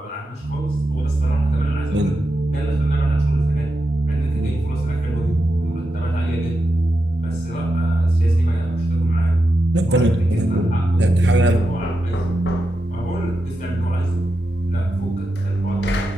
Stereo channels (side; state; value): both; normal; correlation 0.88